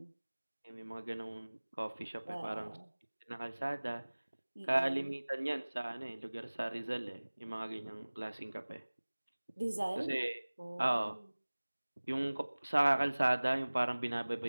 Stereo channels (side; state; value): both; inverted; correlation -1.00